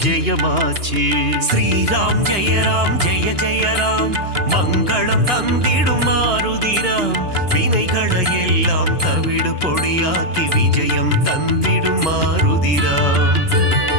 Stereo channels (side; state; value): left; late; 2.9 ms